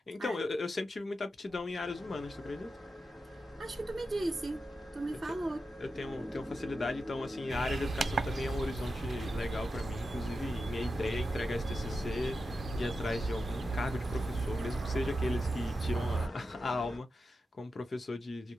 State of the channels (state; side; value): normal; both; correlation 0.90